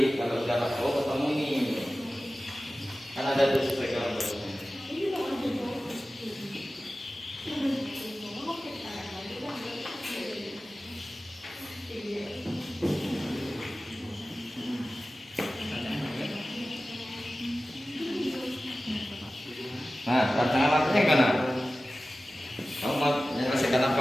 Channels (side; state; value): both; normal; correlation 0.96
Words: kalau sudah ketemu ini kan ada tuh sesuai gambar. Nah, rancangan alatnya yang mana? Kamu mau menyelesaikan